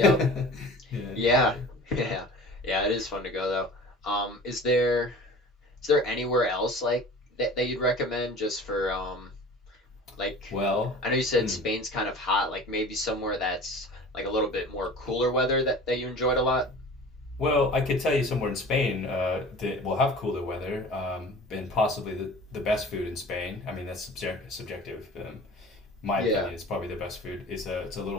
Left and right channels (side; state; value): both; normal; correlation 0.42